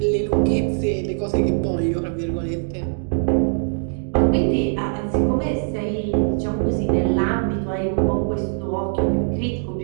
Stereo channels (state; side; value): silent; left; digital silence